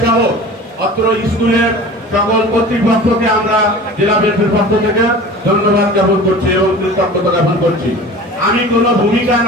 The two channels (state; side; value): normal; both; correlation 0.39